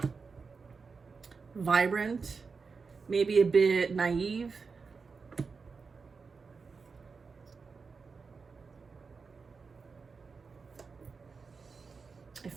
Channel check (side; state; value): left; quieter; 4.9 dB